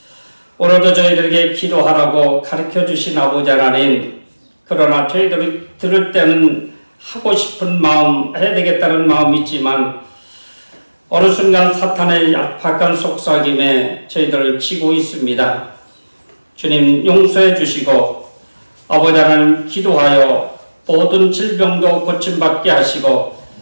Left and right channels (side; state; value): both; inverted; correlation -1.00